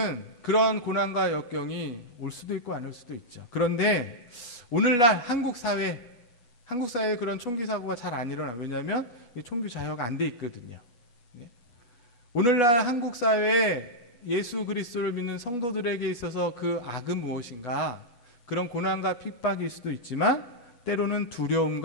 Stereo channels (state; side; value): late; right; 8.2 ms